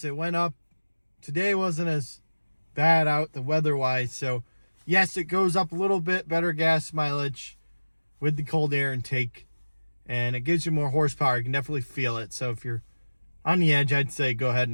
it went up. Today wasn't as bad out the weather-wise, so yes, it goes up a little bit, better gas mileage with the cold air intake, and it gives you more horsepower. You can definitely feel it. So if you're on the edge, I'd say go ahead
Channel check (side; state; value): both; inverted; correlation -1.00